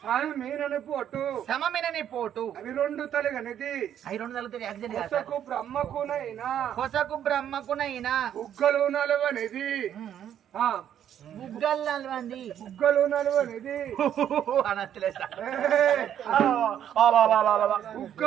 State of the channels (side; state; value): left; quieter; 10.0 dB